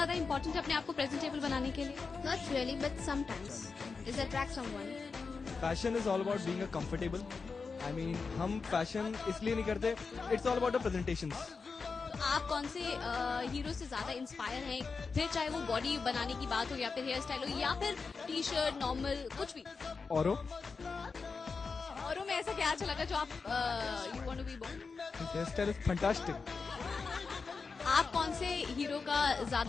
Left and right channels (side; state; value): right; quieter; 4.7 dB